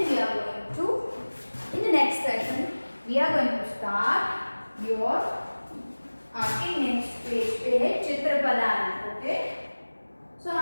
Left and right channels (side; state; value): both; inverted; correlation -1.00